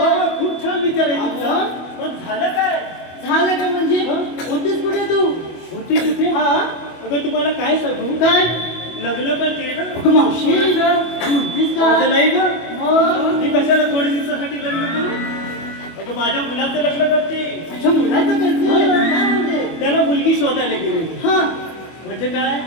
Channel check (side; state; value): right; late; 24 ms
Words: खूप छान विचार आहे तुमचा. मग झालं काय? झालं का म्हणजे होतीस कुठे तू? होती कुठे? हा अगं तुम्हाला काय सांगू, काय? लग्न करते ना. अगं मावशी म्हणतीस का? माझं नाही का? मग मी कशाला थोड्या दिवसासाठी लग्न करू? अगं माझ्या मुलाचं लग्न करते. तुझ्या मुलाचं करते? काय म्हणते? त्याला मुलगी शोधायला गेले. हा म्हणजे काय?